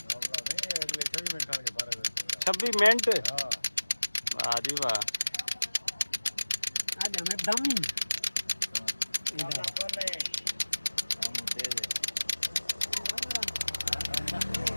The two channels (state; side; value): inverted; both; correlation -1.00